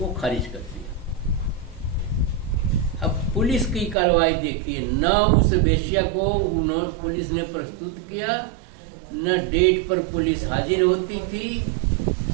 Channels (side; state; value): left; drops out; at 4.0 s